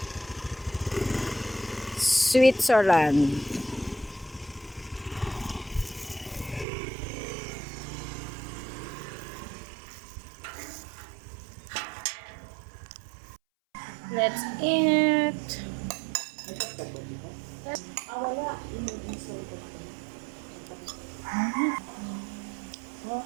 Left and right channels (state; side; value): drops out; left; at 6.7 s